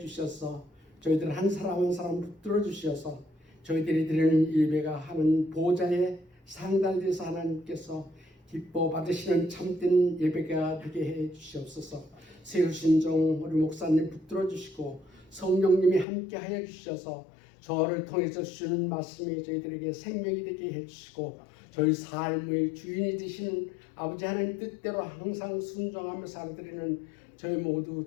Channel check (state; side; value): drops out; right; at 16.1 s